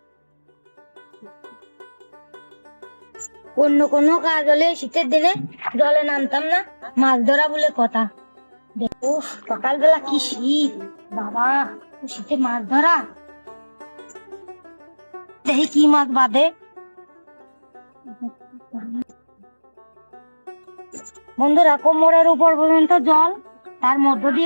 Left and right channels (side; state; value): both; inverted; correlation -1.00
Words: অন্য কোনো কাজ হলে শীতের দিনে জলে নামতাম না, মাছ ধরা বলে কথা। দেখো সকালবেলা কি শীত, বাবা শীতে মাছ ধরা। দেখি কি মাছ বাঁধে। বন্ধুরা, কোমরের উপর পর্যন্ত জল, তার মধ্য